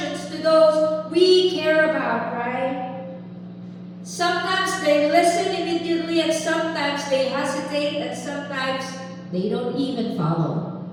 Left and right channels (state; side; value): identical; both; correlation 1.00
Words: to those we care about, right? Sometimes they listen immediately, and sometimes they hesitate, and sometimes they don't even follow.